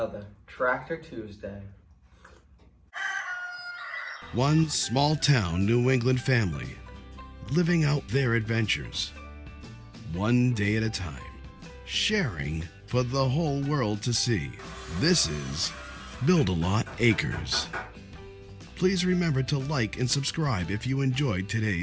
Tractor Tuesday? One small town New England family living out their adventures, one day at a time, sharing for the whole world to see. This is Build-A-Lot Acres. Please remember to like and subscribe if you enjoyed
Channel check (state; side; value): identical; both; correlation 1.00